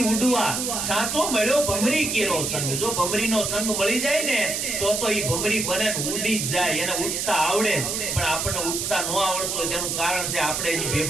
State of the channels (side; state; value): right; noise; hiss, 1 dB below the sound